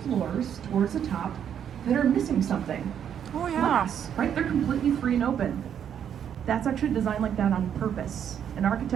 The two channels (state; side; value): quieter; left; 8.9 dB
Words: floors towards the top that are missing something. Oh yeah. Glass, right? They're completely free and open. That's actually designed like that on purpose. In